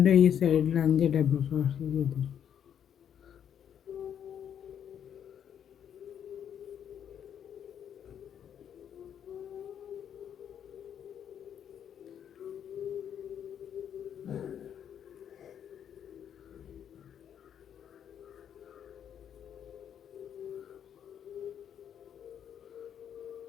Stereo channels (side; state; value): right; quieter; 9.0 dB